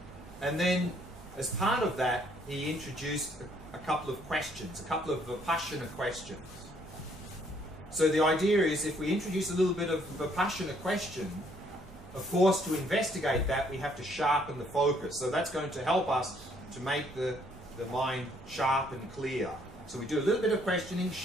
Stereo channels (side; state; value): both; normal; correlation 0.66